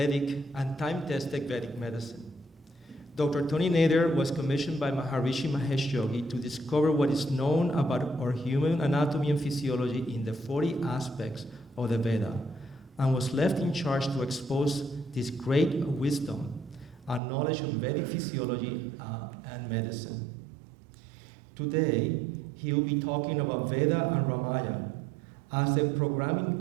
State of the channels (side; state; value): left; drops out; at 17.2 s